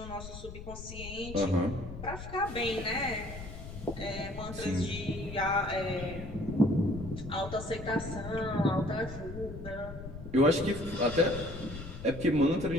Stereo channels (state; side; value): noise; left; rumble, 11 dB below the sound